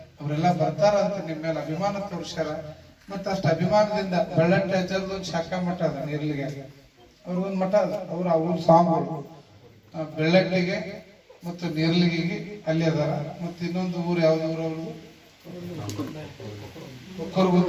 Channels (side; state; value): both; identical; correlation 1.00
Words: ಅವರೆಲ್ಲ ಬರ್ತಾರ ಅಂತ ನಿಮ್ಮ ಮೇಲೆ ಅಭಿಮಾನ ತೋರ್ಸ್ಯಾರ. ಮತ್ತ ಅಷ್ಟ ಅಭಿಮಾನದಿಂದ ಬೆಳ್ಳಟ್ಟಿ ಅಜ್ಜರ್ದು ಒಂದು ಶಾಖಾ ಮಠ ಅದ ನೀರ್ಲಿಗೆ, ಅವ್ರಿಗೊಂದು ಮಠ ಅದ, ಅವ್ರ ಸ್ವಾಮಿಗಳು ಬೆಳ್ಳಟ್ಟಿಗೆ ಮತ್ತು ನೇರ್ಲಿಗಿಗೆ ಅಲ್ಲಿ ಅದಾರ. ಮತ್ತು ಇನ್ನೊಂದು ಊರು ಯಾವ್ದು ಊರು ಅವ್ರದ್ದು